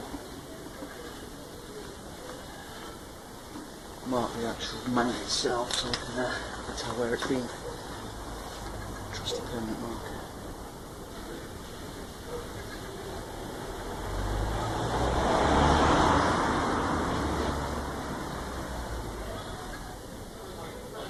mount itself so I can tell where it's been. Trusty permanent marker.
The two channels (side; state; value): both; identical; correlation 1.00